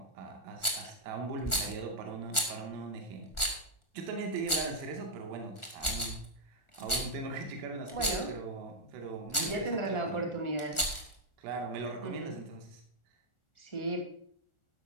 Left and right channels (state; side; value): late; right; 1.4 ms